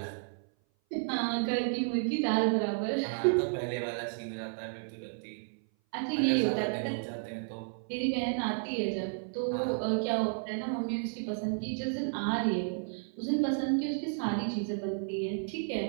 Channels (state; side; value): silent; left; 56 dB below the other